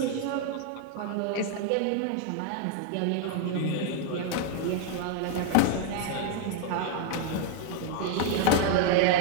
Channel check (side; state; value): both; different; correlation 0.00